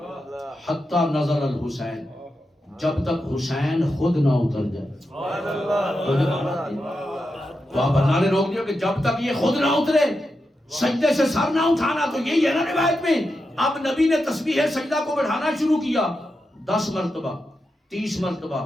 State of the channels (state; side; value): normal; both; correlation 0.88